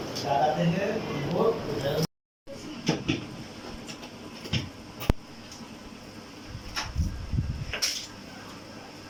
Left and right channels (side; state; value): both; identical; correlation 1.00